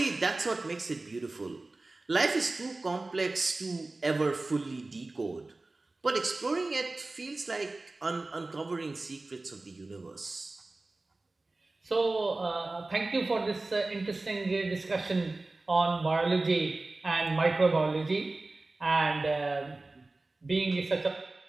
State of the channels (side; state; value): left; quieter; 3.2 dB